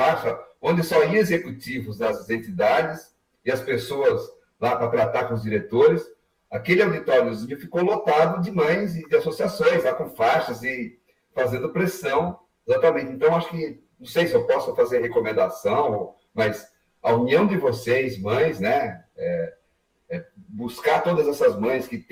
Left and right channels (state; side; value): identical; both; correlation 1.00